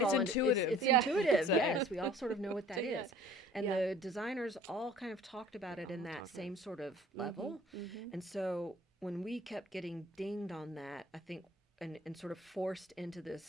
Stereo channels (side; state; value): both; normal; correlation 0.50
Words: It's intuitive. It's intuitive. Yes, we all sort of know what that is. And the designers all kind of talked about it in that same sort of level. And so when we kept getting dinged on that, I think, and sort of forced into